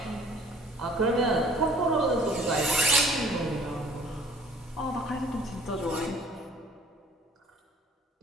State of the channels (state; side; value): normal; both; correlation 0.53